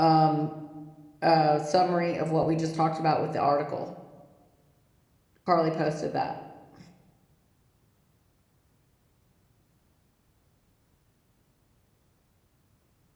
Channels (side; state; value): both; identical; correlation 1.00